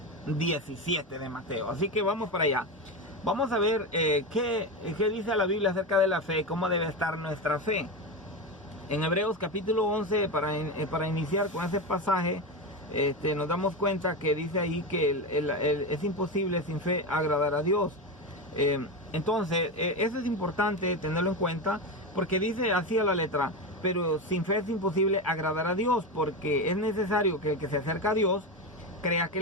17 de Mateo. Así que vamos para allá. Vamos a ver qué dice la Biblia acerca de la fe, cómo debe estar nuestra fe. En Hebreos capítulo 11, para iniciar con ese pasaje, nos damos cuenta que dice ahí que es imposible sin fe agradar a Dios. Entonces, eso es importante tenerlo en cuenta, porque dice así a la letra: pero sin fe es imposible agradar a Dios, porque es necesario que el que se acerca a Dios crea que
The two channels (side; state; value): both; normal; correlation 0.17